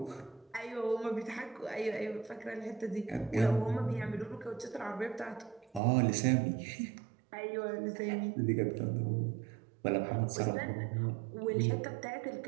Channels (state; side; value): drops out; left; at 5.8 s